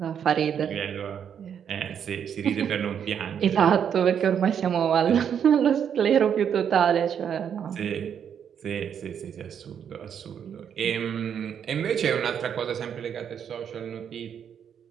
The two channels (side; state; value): left; quieter; 8.3 dB